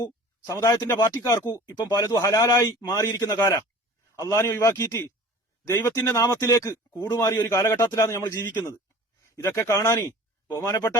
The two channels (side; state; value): both; normal; correlation 0.43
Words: സമുദായത്തിന്റെ പാർട്ടിക്കാർക്കു ഇപ്പം പലതും ഹലാലായി മാറിയിരിക്കുന്ന കാല. അള്ളാഹിനെ ഒഴിവാക്കിയിട്ട് ദൈവത്തിന്റെ നാമത്തിലേക്ക് കൂടുമാറിയ ഒരു കാലഘട്ടത്തിലാണ് നമ്മൾ ജീവിക്കുന്നത്. ഇതൊക്കെ കാണാനി ബഹുമാനപ്പെട്ട